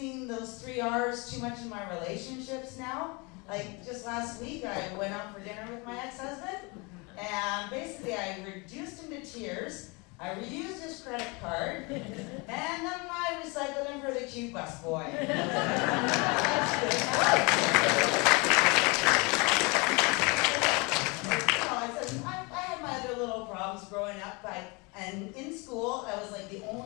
those 3 R's too much in my relationships now. Like just last week, I went out for dinner with my ex-husband, and basically I reduced him to tears. I reused his credit card, and then I recycled him for the cute busboy. That's good. up, and in school, I was like the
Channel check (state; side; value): quieter; right; 28.5 dB